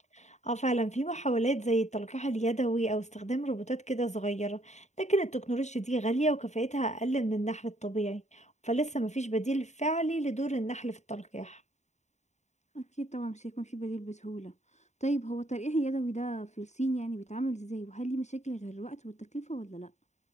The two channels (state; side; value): late; right; 0.34 ms